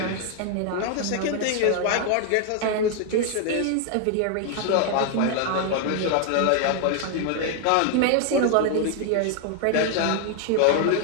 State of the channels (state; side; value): different; both; correlation 0.00